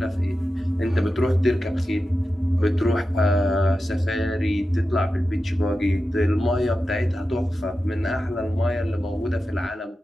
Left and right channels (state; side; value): normal; both; correlation 0.92